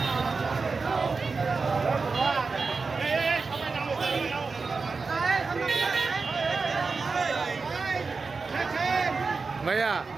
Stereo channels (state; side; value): quieter; left; 4.4 dB